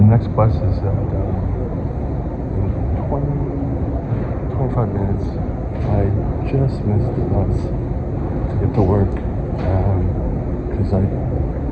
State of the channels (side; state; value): both; identical; correlation 1.00